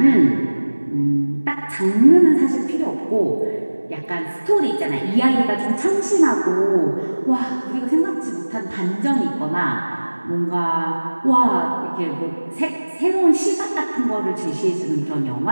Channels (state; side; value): inverted; both; correlation -1.00